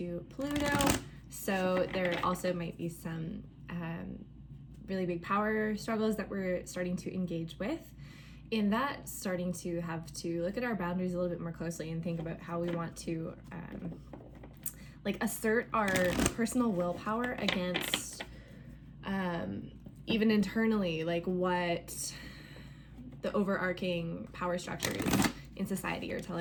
Pluto, so there also might be some really big power struggles that we're starting to engage with. In that, starting to have to look at our boundaries a little bit more closely and think about how we want to assert our personal willpower against even internally, like what the overarching power structures in society are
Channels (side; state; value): both; identical; correlation 1.00